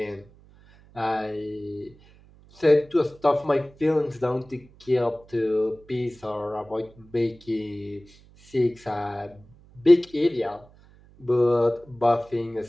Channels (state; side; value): noise; right; hum, 26 dB below the sound